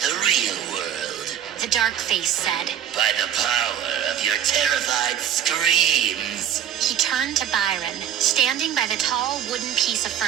real world. The dark face said. By the power of your terrified screams. He turned to Byron, standing by the tall wooden piece of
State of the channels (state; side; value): quieter; left; 9.9 dB